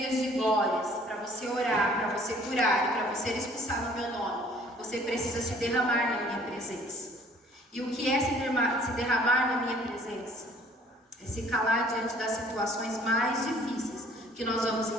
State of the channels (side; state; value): both; normal; correlation 0.55